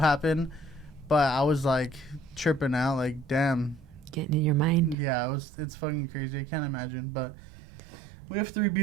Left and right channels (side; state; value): left; drops out; at 5.0 s